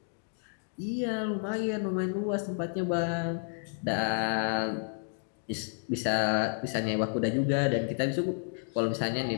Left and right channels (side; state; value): right; silent; 57 dB below the other